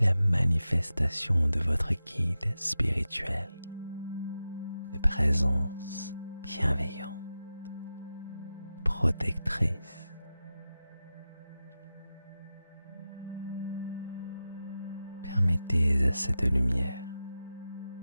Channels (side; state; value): both; inverted; correlation -0.93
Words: la manifestation de votre guide spirituel, de présence bienveillante, protectrice. Permettez à cette lumière